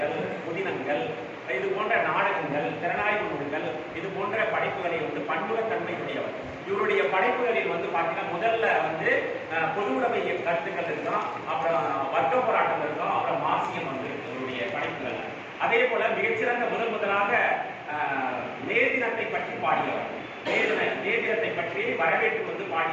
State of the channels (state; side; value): identical; both; correlation 1.00